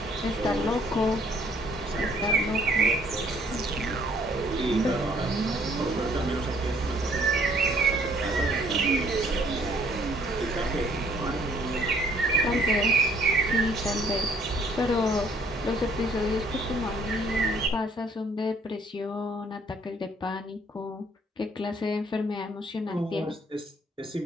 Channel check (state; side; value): normal; both; correlation 0.62